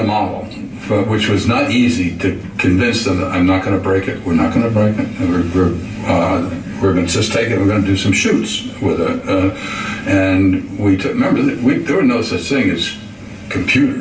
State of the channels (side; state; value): both; identical; correlation 1.00